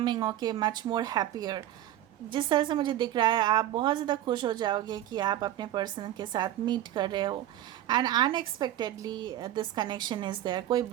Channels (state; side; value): quieter; left; 12.9 dB